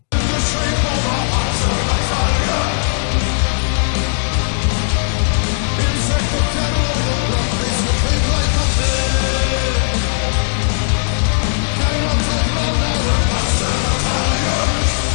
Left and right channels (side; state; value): right; silent; digital silence